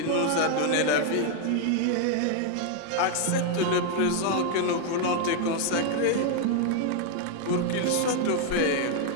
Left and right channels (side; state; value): both; different; correlation 0.00